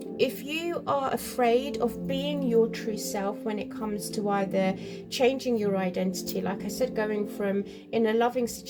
if you are afraid of being your true self when it comes to either changing your identity, like I said, going from in a loving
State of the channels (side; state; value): both; identical; correlation 1.00